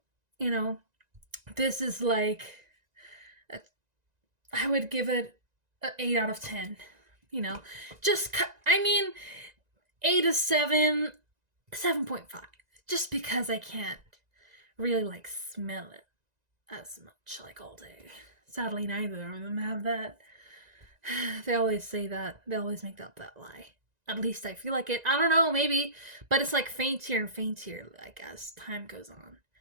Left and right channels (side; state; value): left; late; 1.9 ms